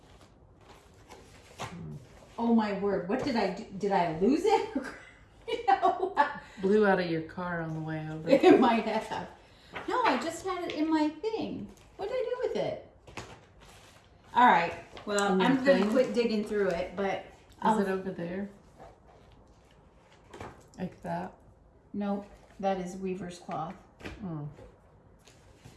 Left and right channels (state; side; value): identical; both; correlation 1.00